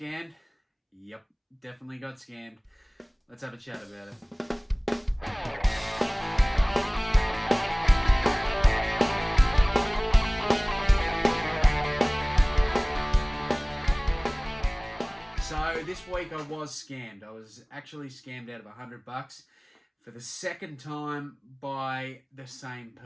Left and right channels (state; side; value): identical; both; correlation 1.00